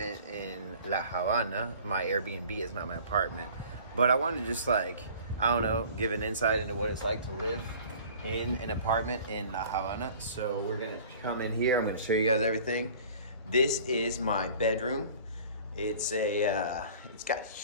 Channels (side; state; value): both; inverted; correlation -0.47